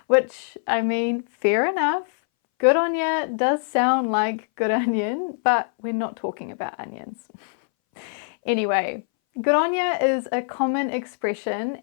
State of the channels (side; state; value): right; silent; 62 dB below the other